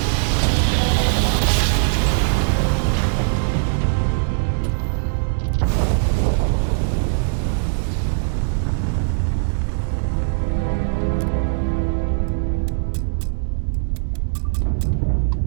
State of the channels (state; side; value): silent; left; digital silence